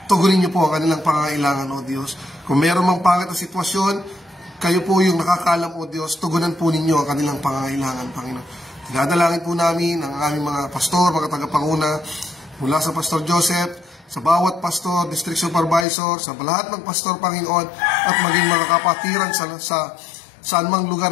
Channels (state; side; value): drops out; right; at 15.9 s